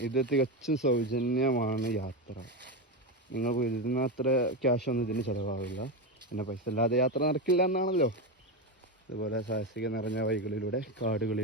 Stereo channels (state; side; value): normal; both; correlation 0.13